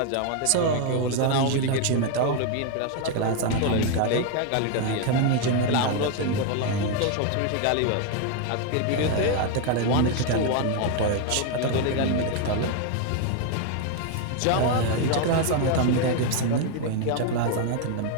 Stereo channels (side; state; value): both; different; correlation 0.01